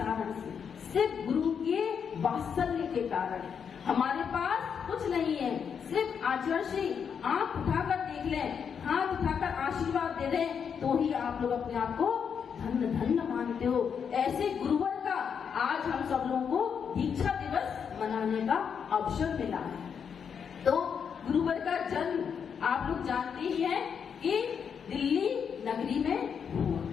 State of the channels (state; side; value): quieter; right; 7.1 dB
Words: से? सिर्फ गुरु के वात्सल्य के कारण। हमारे पास कुछ नहीं है, सिर्फ आचार्य जी आंख उठाकर देख लें, हाथ उठाकर आशीर्वाद दे दें, तो ही आप लोग अपने आप को धन्य धन्य मानते हो। ऐसे गुरुवर का आज हम सब लोगों को दीक्षा दिवस मनाने का अवसर मिला है। तो गुरुवर का जन्म आप लोग जानते ही हैं कि दिल्ली नगरी में